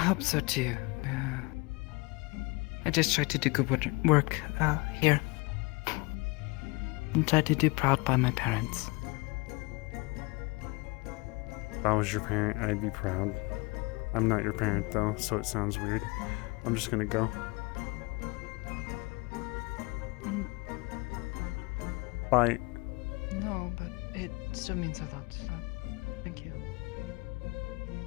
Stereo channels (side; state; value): right; quieter; 26.1 dB